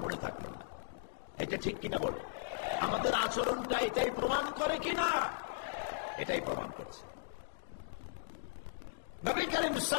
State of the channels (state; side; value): silent; right; digital silence